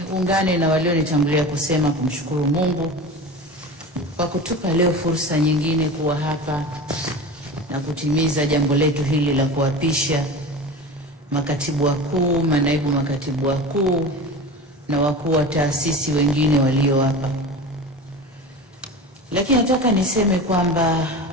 ungane na walionitangulia kusema kumshukuru Mungu kwa kutupa leo fursa nyingine kuwa hapa na kutimiza jambo letu hili la kuapisha makatibu wakuu, manaibu makatibu wakuu na wakuu wa taasisi wengine walio hapa. Lakini nataka niseme kwamba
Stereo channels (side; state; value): both; normal; correlation 0.31